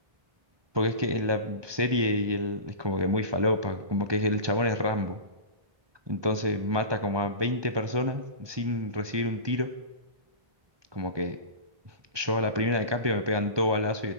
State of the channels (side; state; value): left; late; 1.2 ms